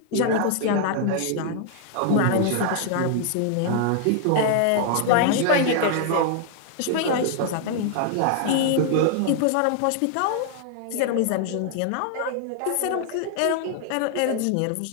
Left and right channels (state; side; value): different; both; correlation 0.00